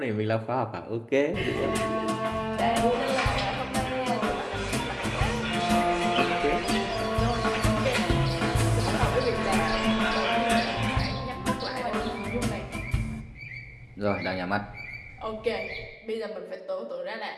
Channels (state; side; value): identical; both; correlation 1.00